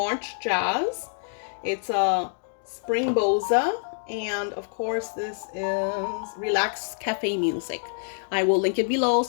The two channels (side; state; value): right; silent; digital silence